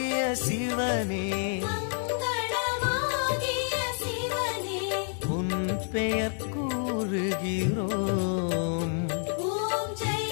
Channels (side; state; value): right; silent; 59 dB below the other